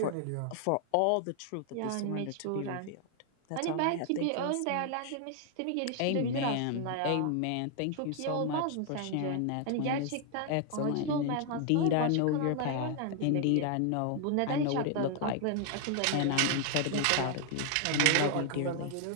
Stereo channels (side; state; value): both; different; correlation 0.00